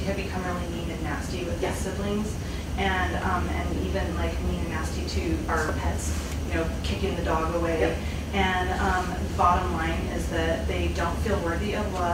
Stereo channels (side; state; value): both; identical; correlation 1.00